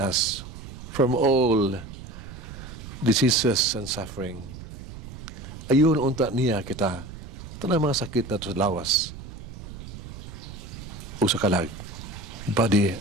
from all diseases and suffering. Ayun unta niya kita, tanang mga sakit na sa lawas, o sa kalag, body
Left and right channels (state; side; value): noise; right; rumble, 12 dB below the sound